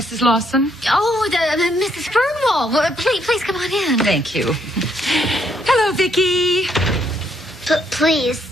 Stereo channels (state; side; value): normal; both; correlation 0.72